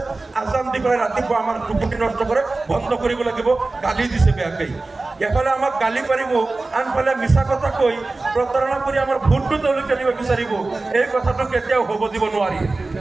আজান দি পেলাই ৰাতিপুৱা আমাৰ টোপনি নষ্ট কৰে, বন্ধ কৰিব লাগিব, গালি দিছে বেয়াকৈ। এফালে আমাক গালি পাৰিব, আনফালে মিছা কথা কৈ প্ৰতাৰণা কৰি আমাৰ ভোটটো তেওঁলোকে নিব বিচাৰিব। এই কথাটো কেতিয়াও হ'ব দিব নোৱাৰি।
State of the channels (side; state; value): left; quieter; 3.3 dB